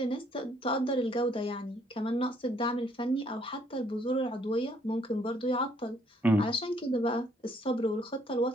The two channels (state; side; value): normal; both; correlation 0.66